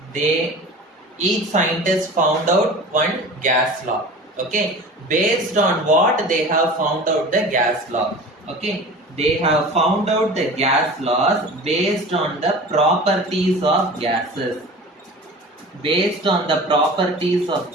they Each scientist found out one gas law. Okay, based on what they have found out the gas law. Okay, they have found out the gas laws based on the properties of gases. Based on the properties of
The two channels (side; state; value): both; normal; correlation 0.38